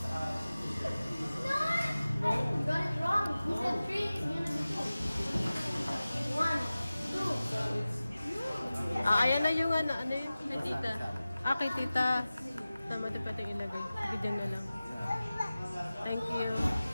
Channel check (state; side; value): inverted; both; correlation -0.97